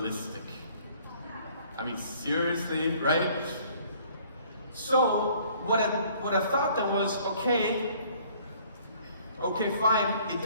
I mean, seriously, right? So, what I thought then was, okay, fine, it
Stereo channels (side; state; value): both; inverted; correlation -0.57